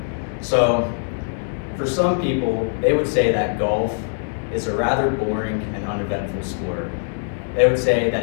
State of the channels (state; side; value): silent; right; digital silence